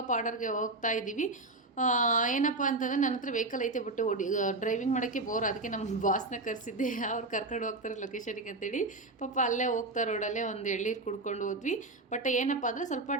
ಆರ್ಡರ್ಗೆ ಹೋಗ್ತಾ ಇದ್ದೀವಿ. ಏನಪ್ಪ ಅಂತಂದರೆ ನನ್ನ ಹತ್ರ ವೆಹಿಕಲ್ ಐತೆ, ಬಟ್ ಡ್ರೈವಿಂಗ್ ಮಾಡೋಕ್ಕೆ ಬೋರ್. ಅದಕ್ಕೆ ನಮ್ಮ ಬಾಸ್ನ ಕರೆಸಿದ್ದೆ, ಅವ್ರು ಕರ್ಕೊಂಡು ಹೋಗ್ತಾರೆ ಲೊಕೇಶನಿಗೆ ಅಂತೇಳಿ. ಪಾಪ ಅಲ್ಲೇ ಹೋಗ್ತಾ ರೋಡಲ್ಲೇ ಒಂದು ಎಳ್ಳೀರು ಕುಡ್ಕೊಂಡು ಹೋದ್ವಿ. ಬಟ್ ಏನಪ್ಪ ಅಂದರೆ ಸ್ವಲ್ಪ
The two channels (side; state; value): left; quieter; 3.1 dB